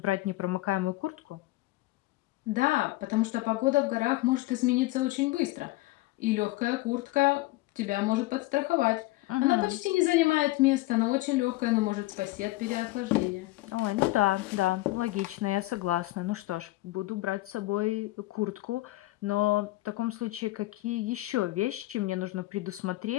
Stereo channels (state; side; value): quieter; right; 19.2 dB